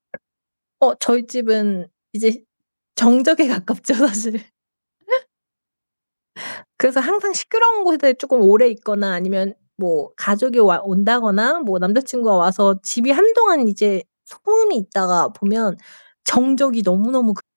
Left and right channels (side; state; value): both; inverted; correlation -1.00